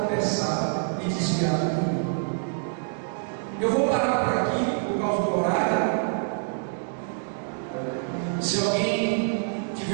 e desviar do caminho. Eu vou parar por aqui por causa do horário. Se alguém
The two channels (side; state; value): left; silent; digital silence